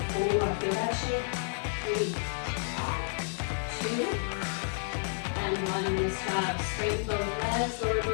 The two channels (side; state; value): right; silent; digital silence